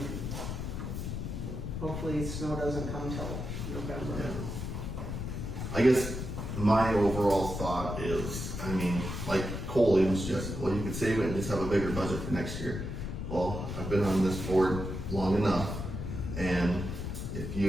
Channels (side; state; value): left; noise; rumble, 5 dB below the sound